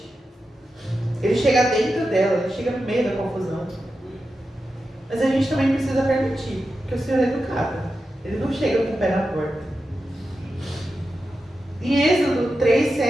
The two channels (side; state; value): both; normal; correlation 0.90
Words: Ele chega dentro dela, Ele chega no meio da confusão. Mas a gente também precisa permitir, porque o Senhor é educado. Ele não chega com o pé na porta. Em Êxodo